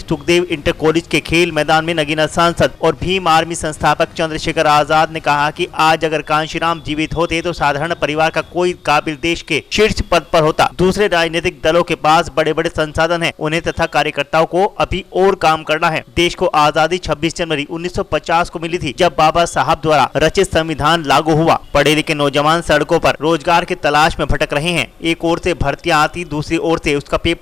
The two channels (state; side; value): quieter; right; 5.4 dB